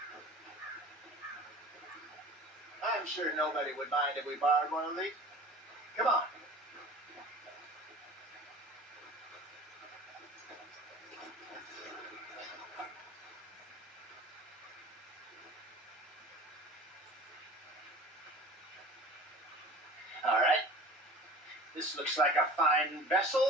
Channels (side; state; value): both; normal; correlation 0.41